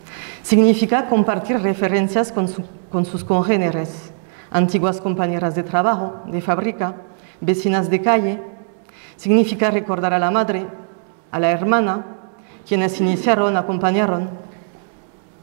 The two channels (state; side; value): silent; left; 66 dB below the other